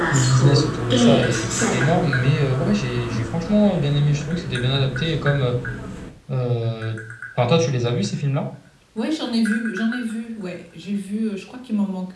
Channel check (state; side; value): identical; both; correlation 1.00